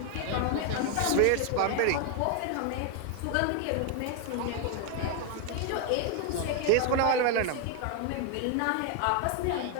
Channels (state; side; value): different; both; correlation 0.01